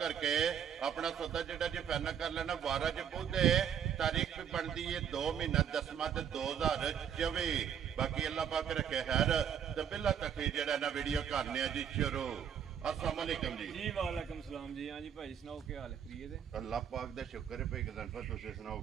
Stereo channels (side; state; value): left; quieter; 8.5 dB